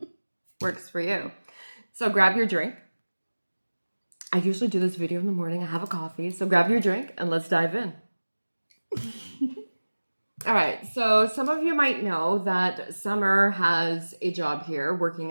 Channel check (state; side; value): inverted; both; correlation -1.00